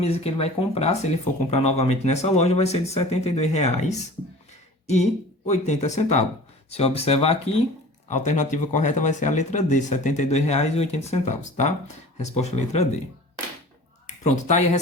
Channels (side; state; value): both; normal; correlation 0.41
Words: que ele vai comprar, se ele for comprar novamente nessa loja, vai ser de R$ 72,80. Se eu observar aqui, a alternativa correta vai ser a letra D, R$ 72,80, tá? Resposta letra D. Pronto, tá aí